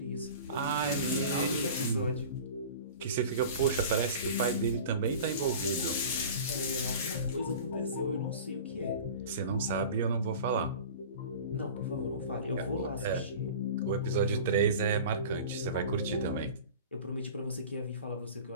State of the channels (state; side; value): inverted; both; correlation -0.38